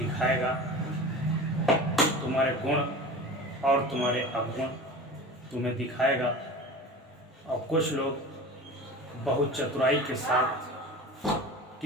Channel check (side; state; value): both; normal; correlation 0.34